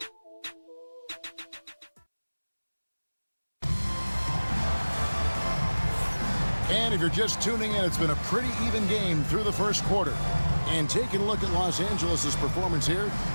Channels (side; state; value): both; inverted; correlation -1.00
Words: And if you're just tuning in, it's been a pretty even game through the first quarter. And taking a look at Los Angeles' performance here,